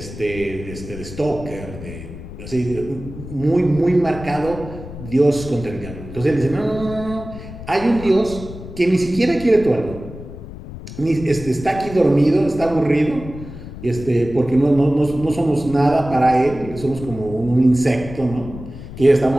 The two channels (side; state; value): left; noise; rumble, 12 dB below the sound